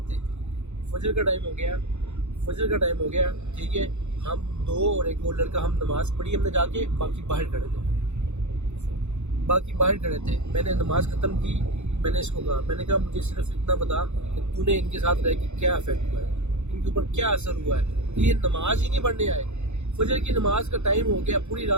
تھے. فجر کا ٹائم ہو گیا, ٹھیک ہے, ہم دو اور ایک اور لڑکا, ہم نماز پڑھی ہم نے جا کے, باقی باہر کھڑے تھے. میں نے نماز ختم کی, میں نے اس کو کہا, میں نے کہا مجھے صرف اتنا بتا کہ تو نے ان کے ساتھ رہ کے کیا افیکٹ ہوا ہے, ان کے اوپر کیا اثر ہوا ہے کہ یہ نماز ہی نہیں پڑھنے آئے. فجر کی نماز کا ٹائم ہو گیا, پوری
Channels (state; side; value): late; left; 0.82 ms